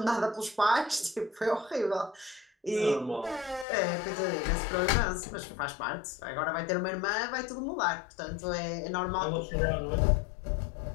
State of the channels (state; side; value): drops out; right; at 3.7 s